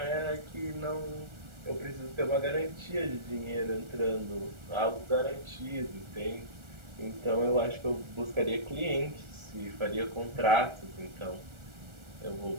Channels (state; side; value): late; left; 1.4 ms